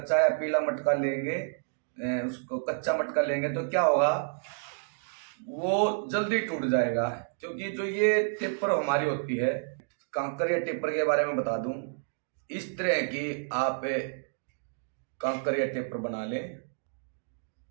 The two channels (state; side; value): silent; left; digital silence